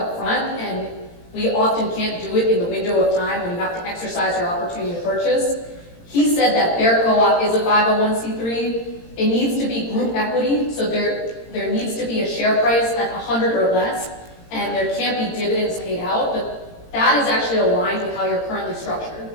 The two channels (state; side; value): late; right; 18 ms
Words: front, and we often can't do it in the window of time when you have to exercise your opportunity to purchase. He said that their co-op is a 501c3. It needs to be group equity, so there needs to be a share price at 100 or less, and there can't be dividends paid out, but that is actually aligned with how you're currently